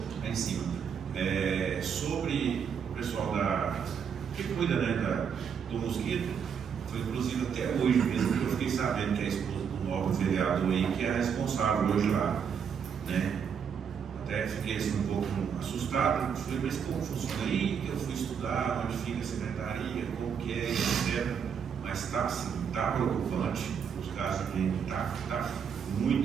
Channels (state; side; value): quieter; left; 7.2 dB